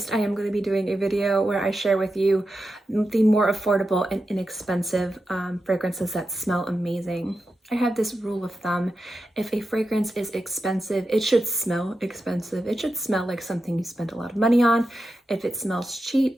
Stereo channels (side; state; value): both; normal; correlation 0.90